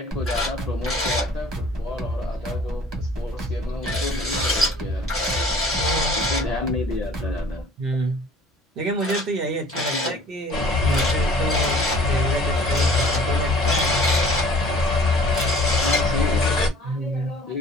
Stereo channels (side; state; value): both; normal; correlation 0.50